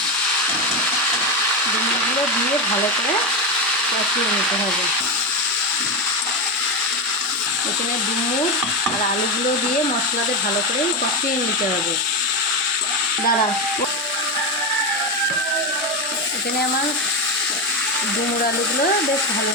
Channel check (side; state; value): both; normal; correlation 0.13